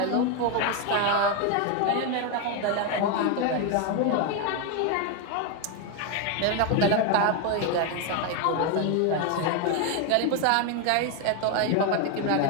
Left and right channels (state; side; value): different; both; correlation 0.01